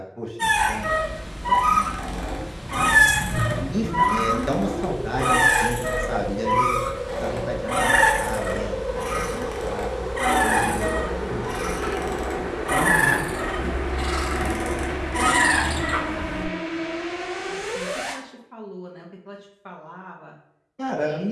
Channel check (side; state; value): both; identical; correlation 1.00